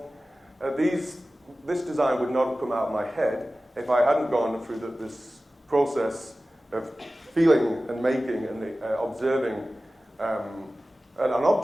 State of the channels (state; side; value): normal; both; correlation 0.96